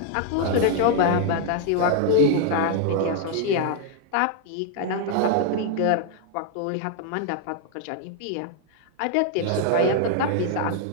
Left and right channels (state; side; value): different; both; correlation 0.00